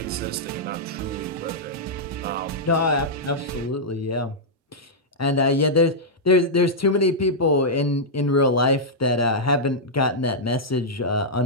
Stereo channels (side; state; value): both; normal; correlation -0.07